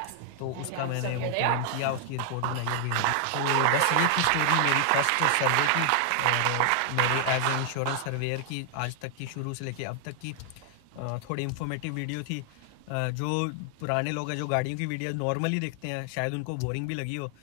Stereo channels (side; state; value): both; different; correlation 0.00